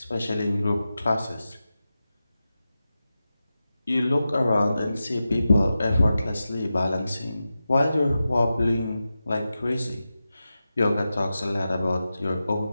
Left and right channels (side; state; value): both; inverted; correlation -0.92